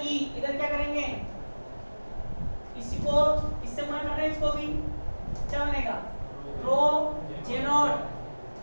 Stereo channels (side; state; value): both; inverted; correlation -1.00